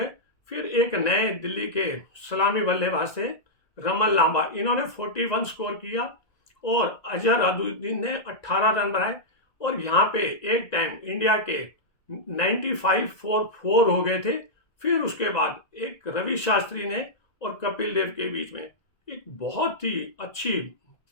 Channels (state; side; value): late; right; 1.9 ms